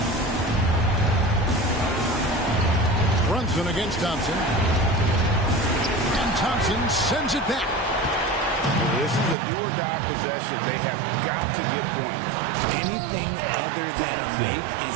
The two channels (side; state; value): left; drops out; at 9.3 s